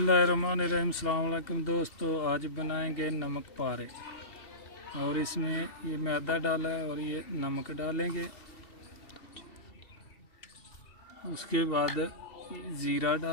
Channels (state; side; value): late; right; 2.7 ms